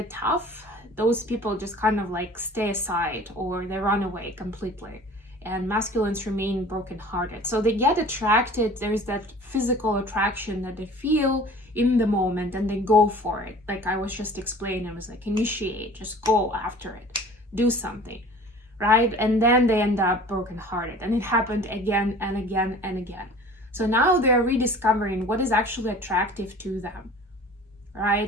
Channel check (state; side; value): normal; both; correlation 0.45